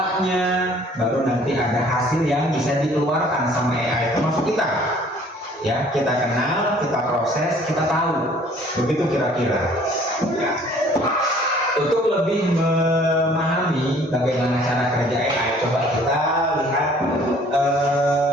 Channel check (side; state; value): both; normal; correlation 0.55